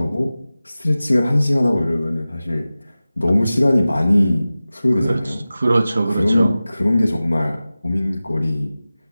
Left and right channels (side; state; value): both; inverted; correlation -0.96